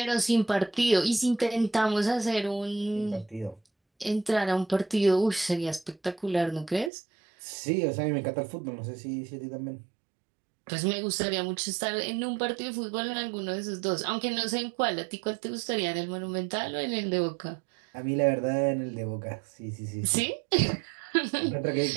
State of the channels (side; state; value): left; drops out; at 6.9 s